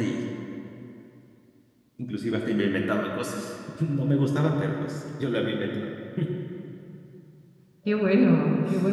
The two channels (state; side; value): identical; both; correlation 1.00